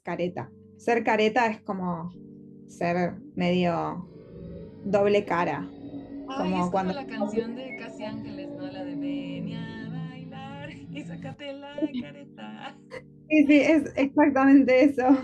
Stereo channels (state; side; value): identical; both; correlation 1.00